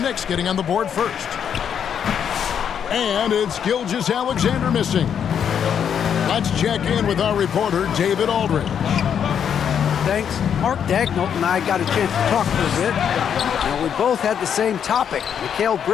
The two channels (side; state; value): right; quieter; 8.2 dB